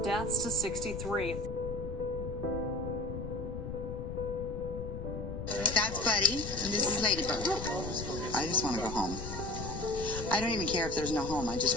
deaths to 63. That's Buddy, and this is Ladybug. I just want to go home. I don't even care if there's no home. I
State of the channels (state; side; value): noise; left; rumble, 7 dB below the sound